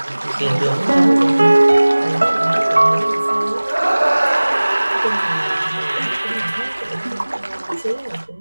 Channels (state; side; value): inverted; both; correlation -1.00